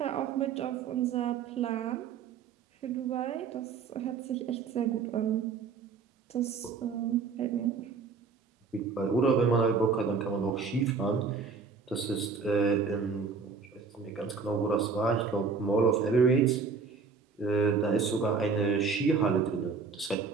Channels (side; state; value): left; quieter; 5.1 dB